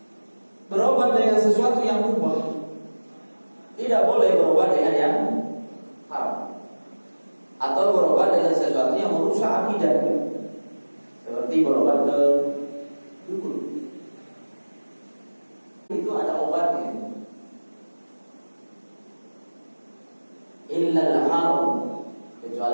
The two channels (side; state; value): both; inverted; correlation -1.00